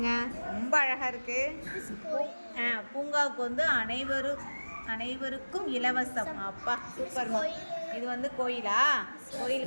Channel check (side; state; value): both; inverted; correlation -1.00